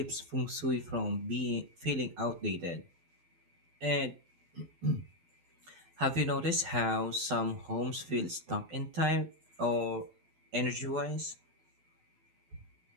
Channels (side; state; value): left; late; 12 ms